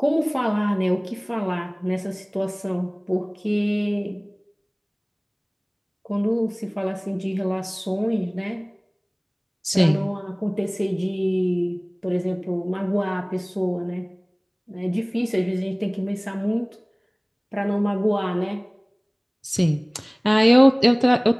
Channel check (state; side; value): identical; both; correlation 1.00